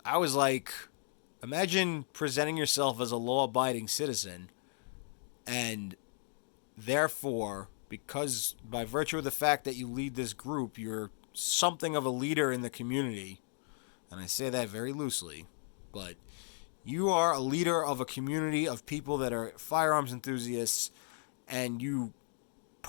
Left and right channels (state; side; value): silent; right; 54 dB below the other